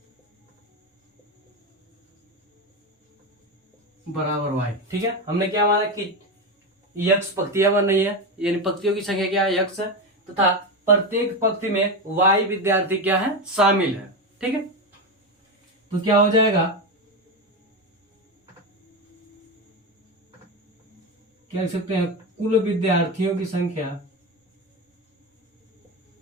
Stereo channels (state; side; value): normal; both; correlation 0.16